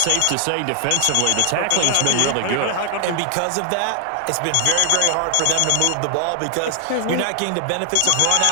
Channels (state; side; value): different; both; correlation 0.00